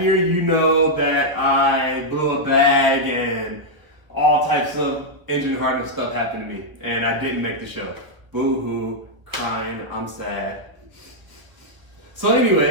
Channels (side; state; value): left; late; 1.3 ms